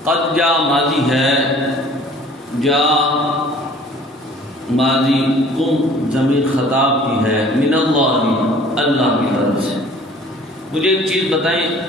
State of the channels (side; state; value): both; normal; correlation 0.51